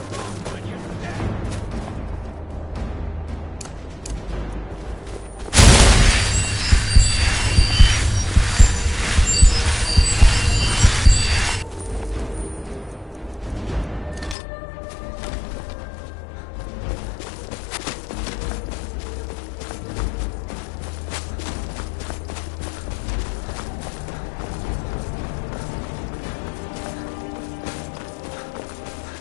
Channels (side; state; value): right; drops out; at 14.4 s